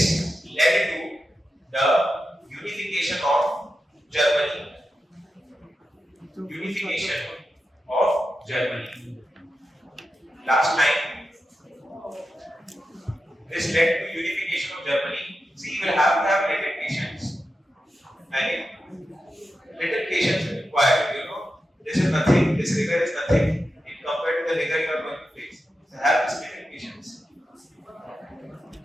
the unification of Germany. Last time, this led to unification of Germany. See, you will have to have little patience. Little patience is required. This is nothing. This rigor is nothing in compared to the rigor you are going to face. So have this little patience.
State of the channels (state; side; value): normal; both; correlation 0.90